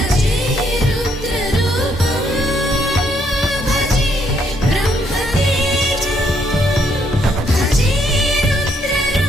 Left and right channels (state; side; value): normal; both; correlation 0.71